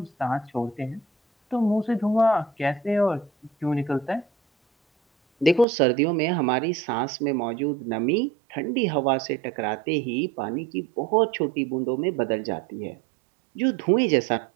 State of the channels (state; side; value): drops out; left; at 5.7 s